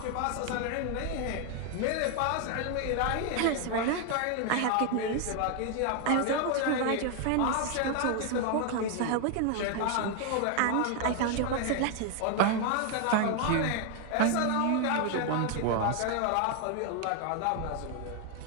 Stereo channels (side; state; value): both; different; correlation 0.01